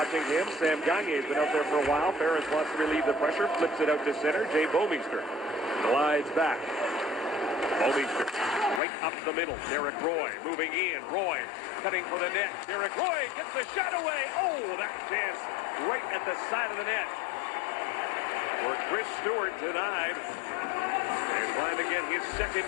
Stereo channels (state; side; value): drops out; right; at 8.8 s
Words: him. Sam Gagne's been out there for a while. Ferentz wants to relieve the pressure. Flips it out to center. Jay Bomeister glides back. Bomeister right up the middle. Derek Roy moving in. Roy cutting for the net. Derek Roy gets the shot away. Oh, that chance right at the side of the net. For Chris Stewart denied. And trying to get his second